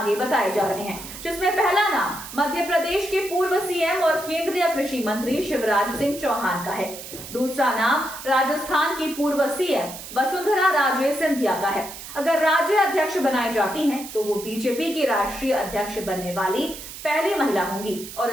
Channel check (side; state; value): right; noise; hiss, 12 dB below the sound